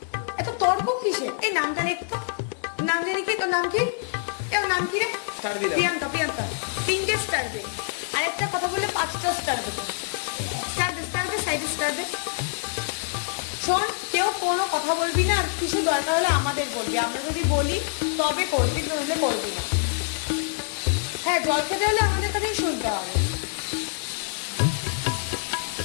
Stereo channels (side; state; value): right; silent; digital silence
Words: এত তর্ক কিসে? এই নামটা লিখতো, নাম জানি কি, তোর নাম কি? এর নাম কি রে? প্রিয়াঙ্কা। প্রিয়াঙ্কা 3টে স্টার দে, আর একটা কথা বললে 5টা স্টার দেবো। স্টার দে, সাইডে স্টার দে। শোন, কেউ কোনো কথা বলবি না, আর কিছু দরকার হলে আমাদের বলবি, আমরা যদি বলি তবে করবি, নইলে করবি না। হ্যাঁ, জল খেতে হলে আমাদের কাছেই শুনতে হবে।